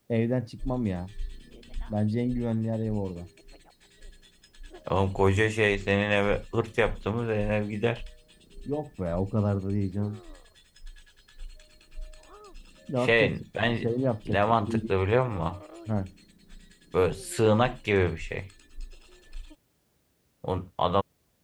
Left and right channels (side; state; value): both; identical; correlation 1.00